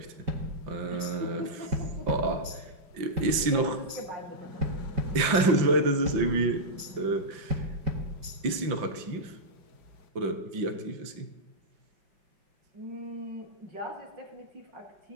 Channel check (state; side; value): late; left; 5.8 ms